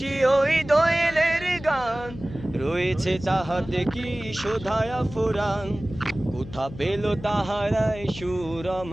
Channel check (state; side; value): noise; left; hum, 14 dB below the sound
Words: ওই দোয়েলের গান, রয়েছে তাহাতে কি শোধায়া ফুরান। কোথা পেল তাহারাই সুর